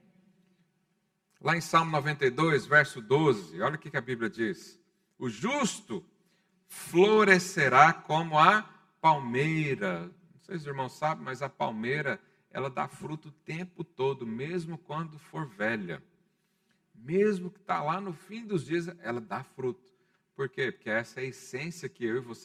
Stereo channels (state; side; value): identical; both; correlation 1.00